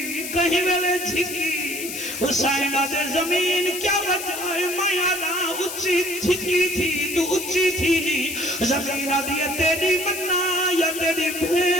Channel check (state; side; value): noise; left; hiss, 7 dB below the sound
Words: کہیں ویلے جھکی حسین دے زمین کیا وجہ ہے مایا دا اچھی جھکی تھی تو اچھی تھی نہیں زمین دیئے تیری مننا یا تیری